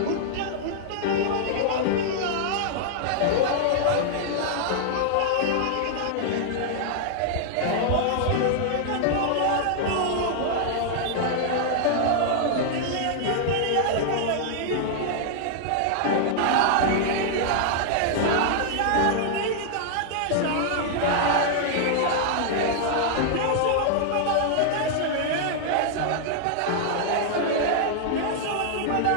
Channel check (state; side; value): different; both; correlation -0.01